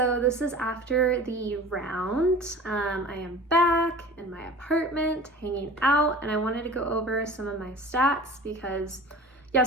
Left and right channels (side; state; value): both; normal; correlation 0.39